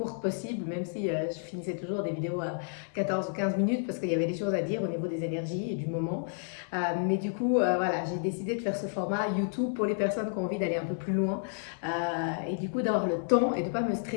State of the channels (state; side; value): silent; right; 57 dB below the other